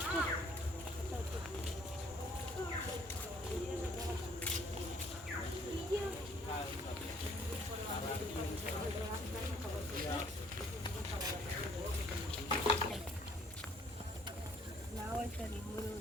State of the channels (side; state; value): both; normal; correlation 0.61